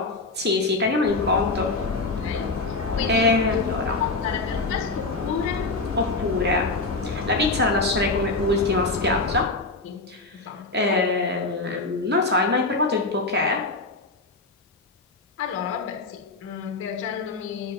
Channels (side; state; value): right; quieter; 3.3 dB